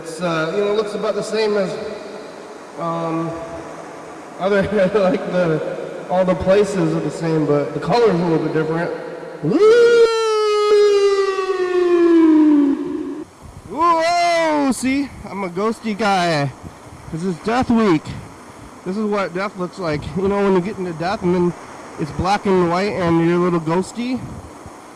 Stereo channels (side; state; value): both; identical; correlation 1.00